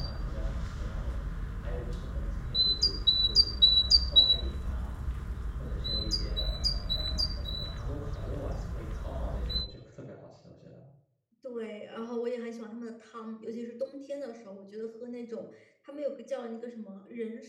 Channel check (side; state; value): both; identical; correlation 1.00